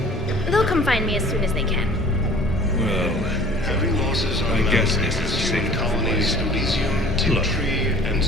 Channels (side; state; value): both; normal; correlation 0.47